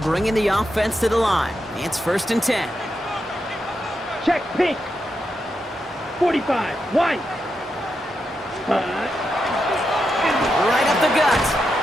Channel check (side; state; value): both; normal; correlation 0.86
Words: the offense to the line. It's 1st and 10. Check pink. 45, white. Right up the gut.